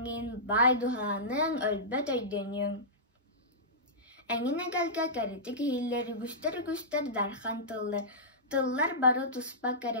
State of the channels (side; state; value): both; normal; correlation -0.17